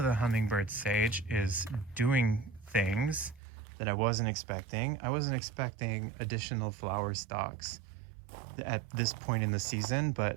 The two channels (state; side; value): drops out; left; at 3.4 s